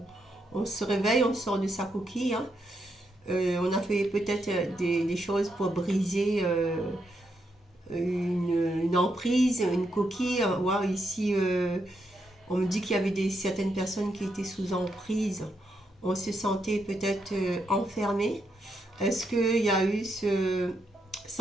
On se réveille, on sort de sa coquille. Hein. On a fait peut-être des choses pour briser une emprise, une coquille. Ouais, ici, on me dit qu'il y avait certaines personnes qui étaient sous emprise. On se sentait peut-être enfermé. Est-ce qu'il y a eu ce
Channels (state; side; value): normal; both; correlation 0.80